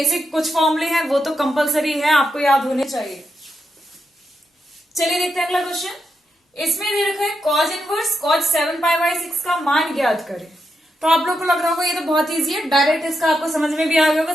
कुछ फॉर्मूले हैं वो तो कंपलसरी है, आपको याद होने चाहिए। चलिए देखते हैं अगला क्वेश्चन। इसमें दे रखा है cause inverse cause 7 pi by 6 का मान ज्ञात करें। तो आप लोग को लग रहा होगा ये तो बहुत इजी है, डायरेक्ट इसका आपको समझ में भी आ गया होगा,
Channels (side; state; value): both; normal; correlation 0.84